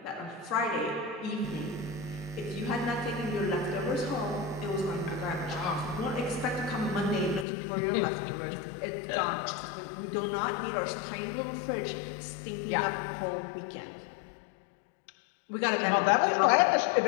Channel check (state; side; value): drops out; right; at 7.5 s